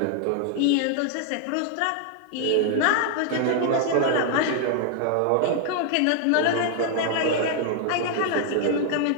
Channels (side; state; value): both; different; correlation 0.00